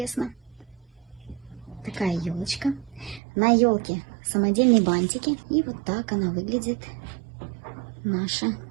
Такая елочка. На елке самодельные бантики. И вот так она выглядит, наша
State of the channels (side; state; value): left; drops out; at 3.2 s